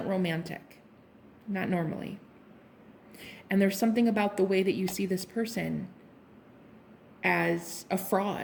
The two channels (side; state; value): both; identical; correlation 1.00